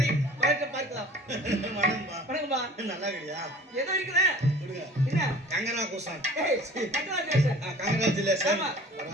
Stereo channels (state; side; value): normal; both; correlation 0.44